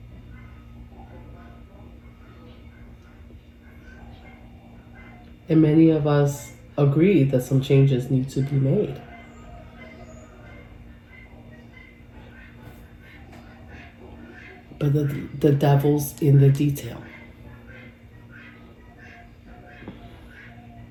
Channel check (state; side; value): identical; both; correlation 1.00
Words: And many of us agree that some changes need to be made. But the devil's in the detail.